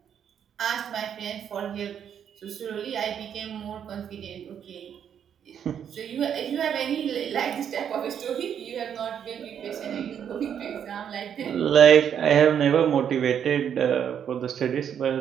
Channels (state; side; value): quieter; left; 8.6 dB